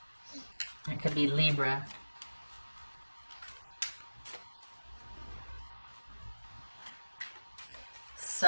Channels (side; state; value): both; inverted; correlation -1.00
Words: It could be Libra.